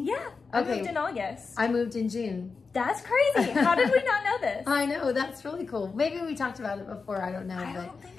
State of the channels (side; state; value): right; quieter; 4.7 dB